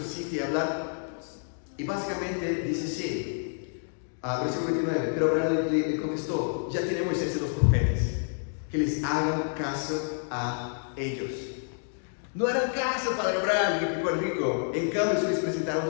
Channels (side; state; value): right; silent; digital silence